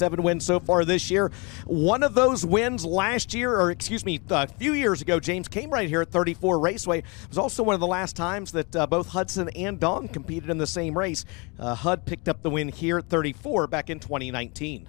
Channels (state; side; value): quieter; right; 30.3 dB